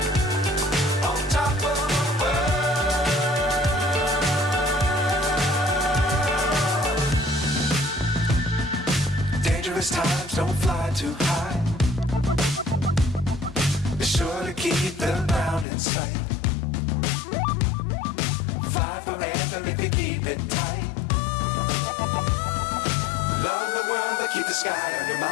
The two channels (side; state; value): right; drops out; at 15.7 s